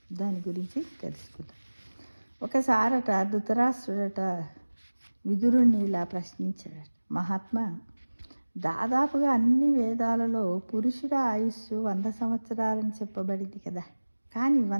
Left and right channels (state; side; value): inverted; both; correlation -1.00